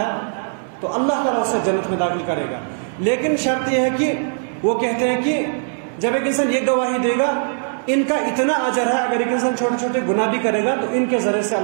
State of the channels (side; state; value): left; silent; 66 dB below the other